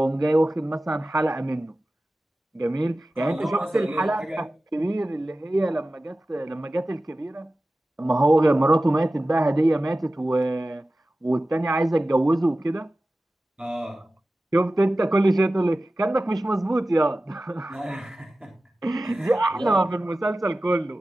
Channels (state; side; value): normal; both; correlation 0.96